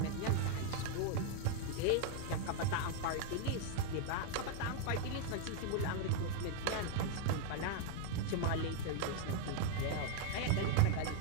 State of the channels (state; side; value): different; both; correlation 0.01